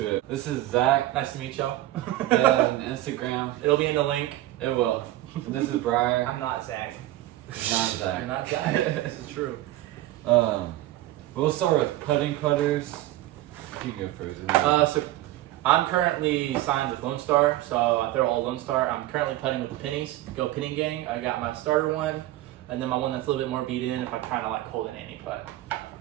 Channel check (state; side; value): quieter; left; 15.6 dB